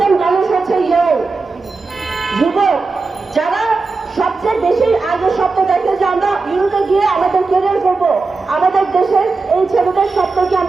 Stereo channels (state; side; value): quieter; left; 4.0 dB